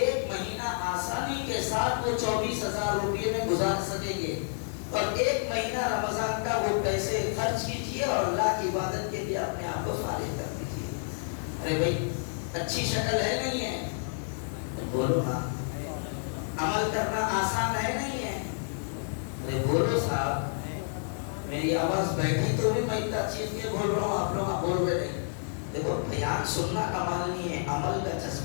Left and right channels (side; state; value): right; silent; digital silence